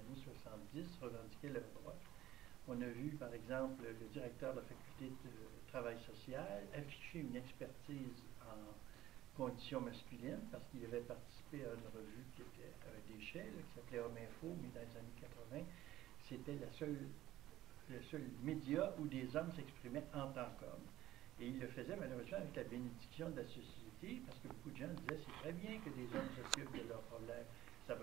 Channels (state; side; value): quieter; left; 14.9 dB